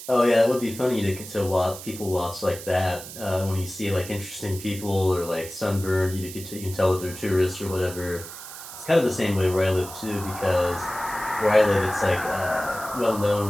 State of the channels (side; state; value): right; noise; hiss, 13 dB below the sound